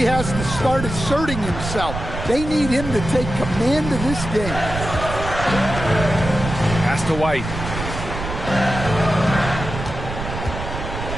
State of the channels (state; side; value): noise; right; rumble, 7 dB below the sound